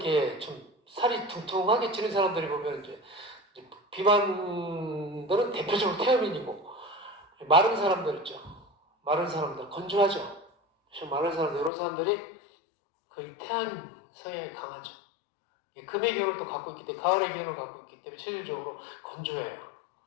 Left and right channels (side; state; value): right; drops out; at 11.7 s